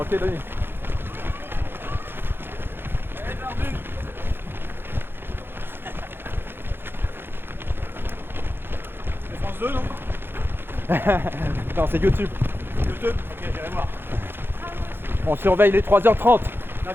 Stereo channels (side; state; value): left; late; 0.10 ms